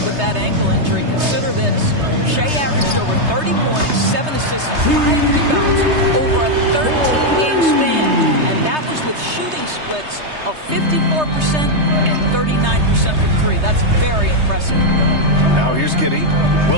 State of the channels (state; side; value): late; left; 3.3 ms